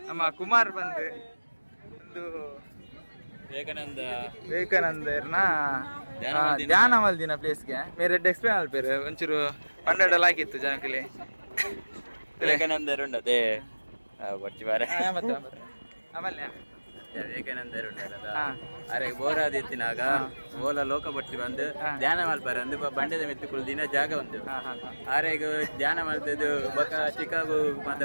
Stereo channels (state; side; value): inverted; both; correlation -1.00